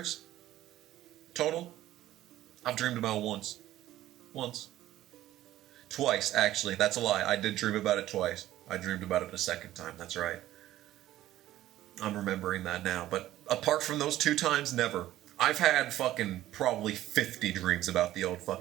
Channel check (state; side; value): quieter; left; 14.2 dB